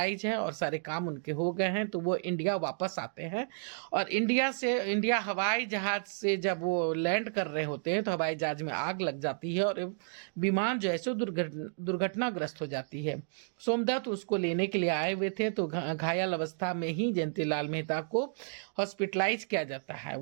है और सारे काम उनके हो गए हैं, तो वो इंडिया वापस आते हैं। और इंडिया हवाई जहाज से जब वो लैंड कर रहे होते हैं तो हवाई जहाज में आग लग जाती है और विमान जो है सो दुर्घटनाग्रस्त हो जाती है। सोमदत्त उसको लेने के लिए आए हुए थे, तो घायल अवस्था में ही जयंती लाल मेहता को हॉस्पिटलाइज किया जाता है।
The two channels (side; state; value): left; silent; digital silence